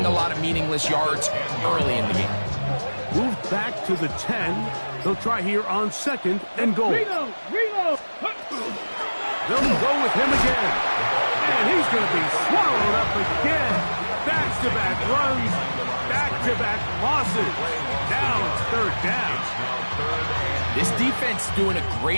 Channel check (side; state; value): both; inverted; correlation -1.00